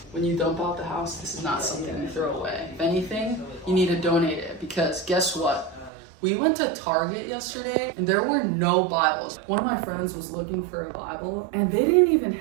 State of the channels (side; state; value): left; drops out; at 5.9 s